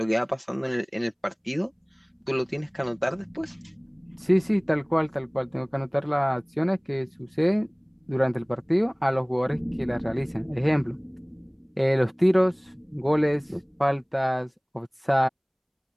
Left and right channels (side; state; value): both; identical; correlation 1.00